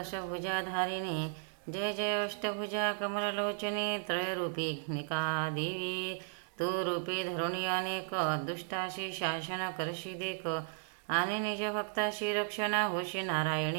जय जय अष्टभुजा कमललोचने त्रयरूपिका देवी. तू रूपे धरुणी अनेक, दुष्टाशी शासन करशी देख, आणि निज भक्ताशी रक्षणा होशी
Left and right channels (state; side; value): silent; left; 54 dB below the other